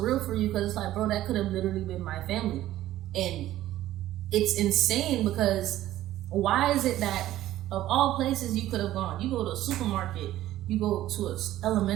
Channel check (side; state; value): left; quieter; 14.1 dB